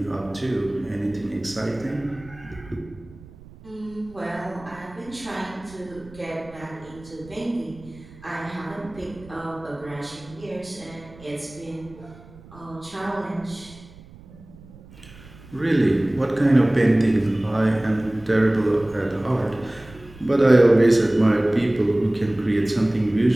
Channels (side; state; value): right; noise; rumble, 21 dB below the sound